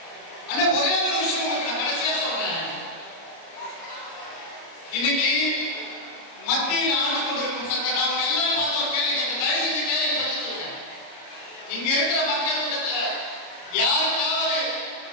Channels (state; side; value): late; right; 30 ms